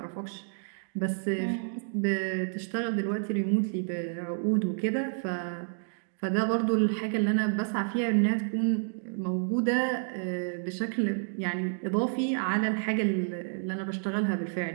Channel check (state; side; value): silent; left; digital silence